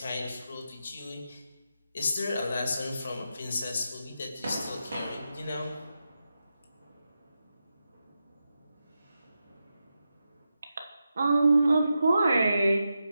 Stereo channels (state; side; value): inverted; both; correlation -0.89